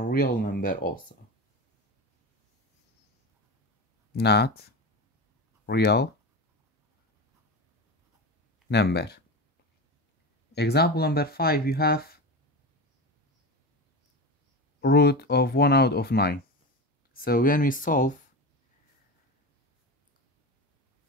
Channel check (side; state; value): both; normal; correlation 0.23